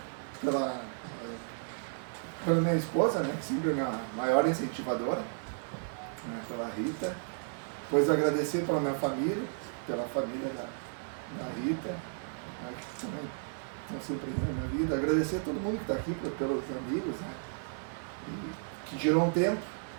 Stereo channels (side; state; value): left; silent; digital silence